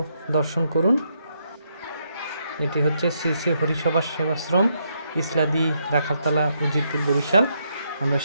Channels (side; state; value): both; inverted; correlation -0.77